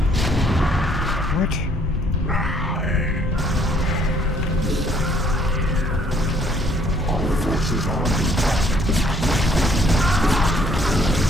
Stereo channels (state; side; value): normal; both; correlation 0.64